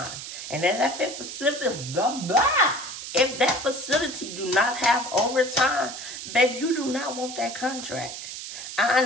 And then if that facility do not have overtime, babe, you do not want that contract. I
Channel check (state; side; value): noise; right; hiss, 9 dB below the sound